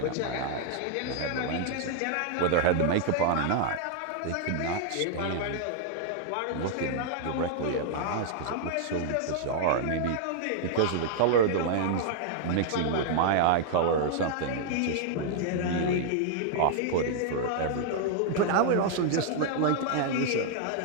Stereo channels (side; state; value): both; different; correlation -0.01